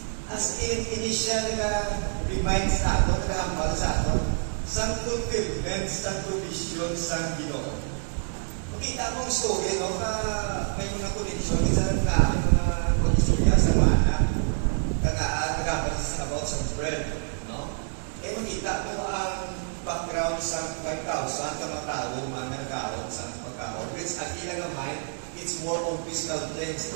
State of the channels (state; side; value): silent; left; 57 dB below the other